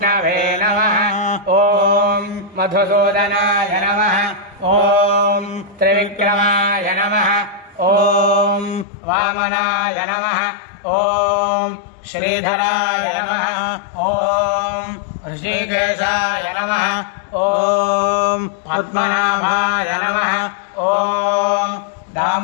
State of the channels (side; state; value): right; drops out; at 8.8 s